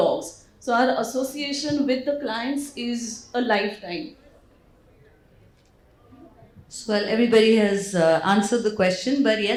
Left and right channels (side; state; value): both; identical; correlation 1.00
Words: So our association with the clients is a lifetime. So, well, everybody has answered the question, but